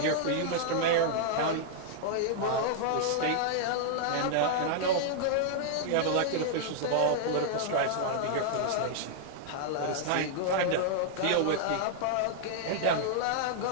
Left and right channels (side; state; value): both; different; correlation -0.01